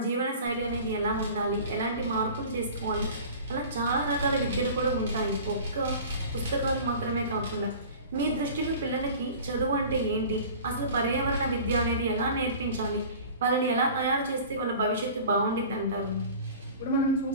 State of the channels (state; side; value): inverted; both; correlation -0.41